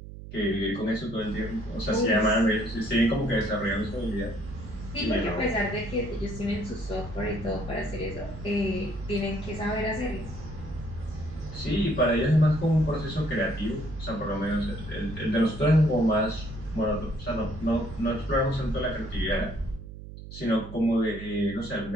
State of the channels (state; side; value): noise; right; hum, 13 dB below the sound